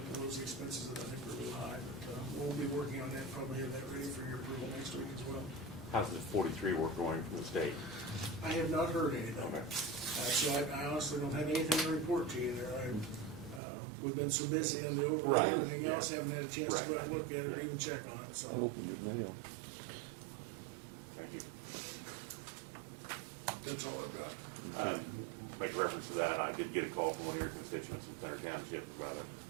of those expenses that I think are a little high. But we'll be working on that, probably have that ready for your approval next week as well. How's the 43 work going from the state? I have not heard anything. Okay. So I honestly don't have anything to report to you there. We've been so busy on the overlay Right, and everything yeah. else, haven't had a chance to go out and Right, look at it or yeah. even check on it, I so. opened your mail. Thank you. That's all I've got. Make reference to that, I did get a call from one of your constituents in Center Township about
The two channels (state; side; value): drops out; left; at 13.6 s